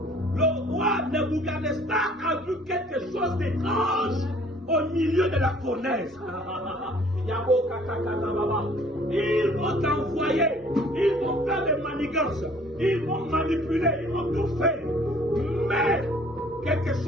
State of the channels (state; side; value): normal; both; correlation 0.56